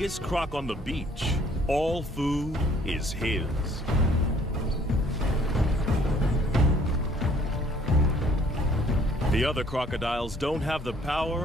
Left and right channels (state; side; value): normal; both; correlation 0.59